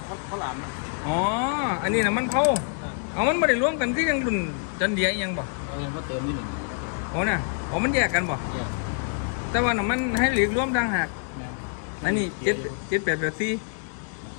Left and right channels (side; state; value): right; silent; 60 dB below the other